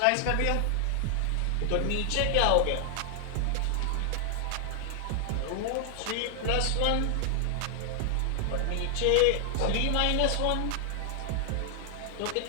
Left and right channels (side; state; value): both; different; correlation 0.00